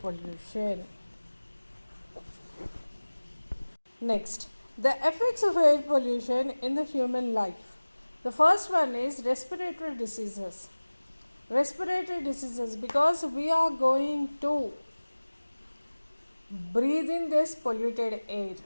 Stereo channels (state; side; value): inverted; both; correlation -1.00